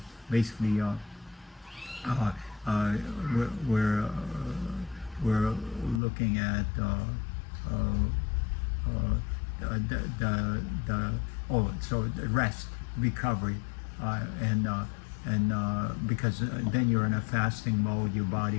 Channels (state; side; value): drops out; right; at 6.0 s